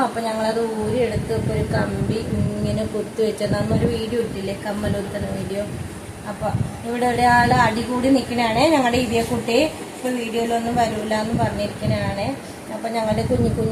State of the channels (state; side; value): identical; both; correlation 1.00